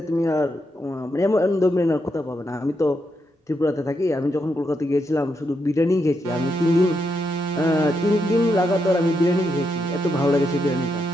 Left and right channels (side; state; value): both; normal; correlation 0.82